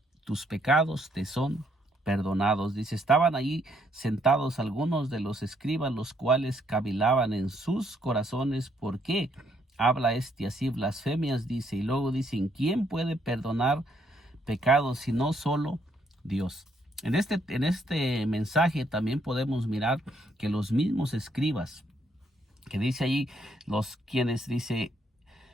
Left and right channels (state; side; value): normal; both; correlation 0.72